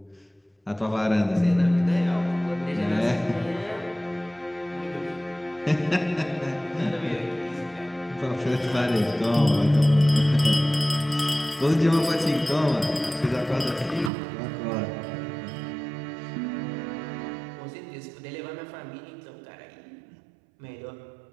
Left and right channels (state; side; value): drops out; left; at 14.1 s